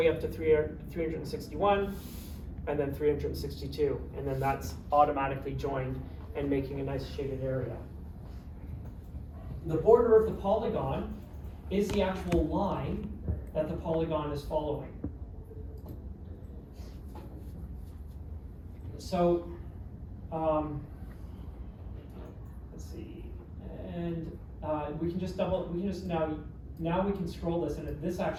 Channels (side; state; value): both; identical; correlation 1.00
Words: up to 361, and then 362. And then that's automatically joined and making a nice shaded area. The border of the polygon is the actual line that the polygon is following. So, let's see, and we can just now we can scroll this, and this